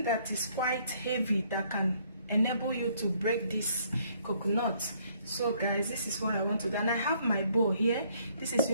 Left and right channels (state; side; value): inverted; both; correlation -0.65